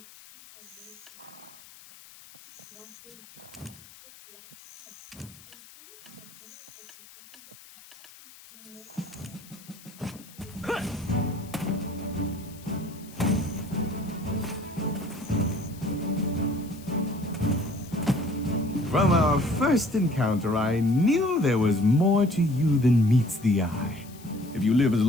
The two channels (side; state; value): left; noise; hiss, 21 dB below the sound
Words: our first encounter, I knew there was more to you than meets the eye. If you live as